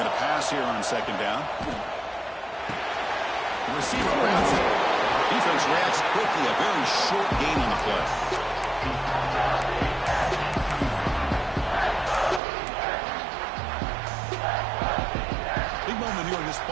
to pass here on 2nd down. The receiver grabs it. Defense reacts quickly. A very short gain on the play. Big moment here in this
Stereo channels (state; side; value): drops out; left; at 12.4 s